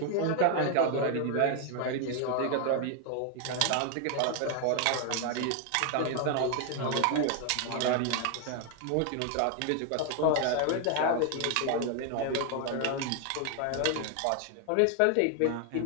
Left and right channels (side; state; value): both; different; correlation 0.01